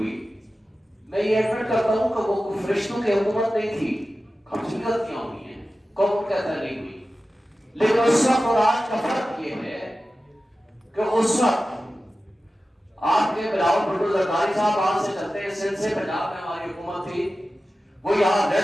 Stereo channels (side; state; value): both; normal; correlation 0.94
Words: میں یہ ایڈمٹ کرتا ہوں کہ وہ فرشتوں کی حکومت نہیں تھی, ہم سے غلطیاں ہوئی ہیں, کون کہتا نہیں ہوئی, لیکن اس وقت اور آج کا فرق یہ ہے کہ اس وقت آپ کے بلاول بھٹو زرداری صاحب وہاں سے چلتے ہیں, سندھ سے پنجاب میں ہماری حکومت تھی, وہ یہاں